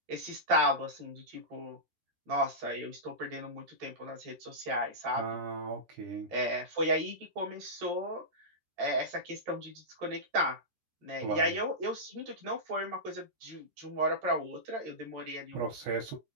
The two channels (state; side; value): late; left; 13 ms